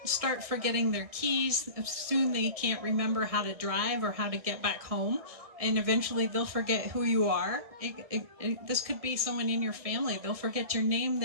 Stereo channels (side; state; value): left; late; 1.7 ms